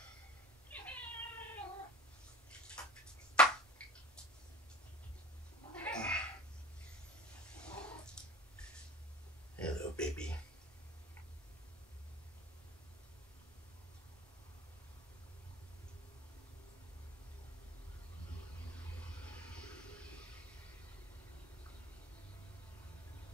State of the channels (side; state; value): both; normal; correlation 0.38